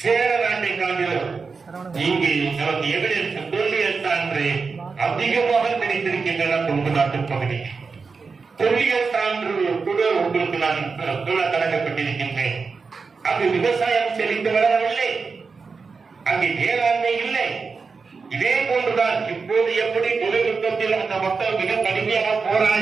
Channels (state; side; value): quieter; left; 4.8 dB